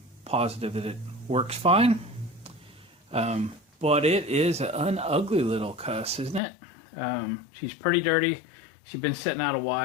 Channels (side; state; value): right; drops out; at 6.4 s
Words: positive that it works fine. But it is an ugly little cuss, isn't it? She's pretty dirty. She's been sitting out a